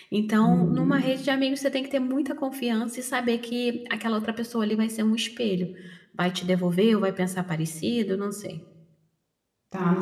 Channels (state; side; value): identical; both; correlation 1.00